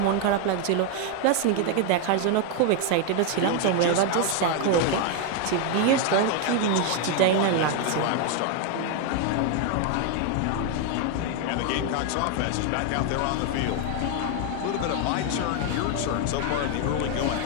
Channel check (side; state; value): both; different; correlation 0.01